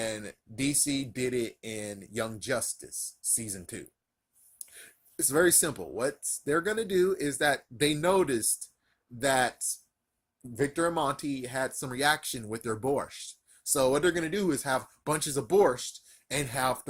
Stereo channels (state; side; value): identical; both; correlation 1.00